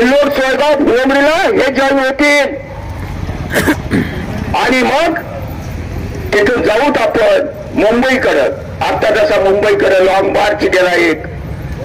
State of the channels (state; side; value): identical; both; correlation 1.00